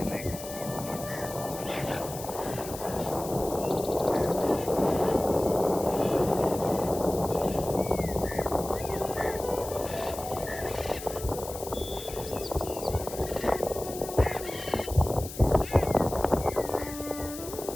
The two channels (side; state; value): left; noise; hiss, 12 dB below the sound